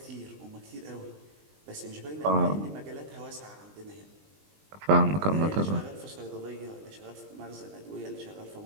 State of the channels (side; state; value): left; late; 20 ms